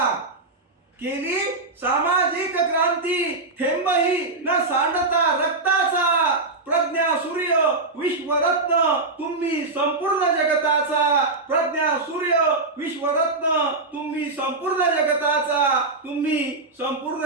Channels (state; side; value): quieter; left; 3.4 dB